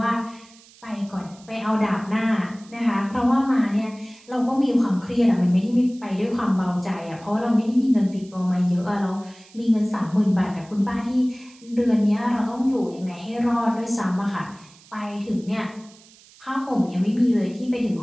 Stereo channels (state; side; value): noise; right; hiss, 25 dB below the sound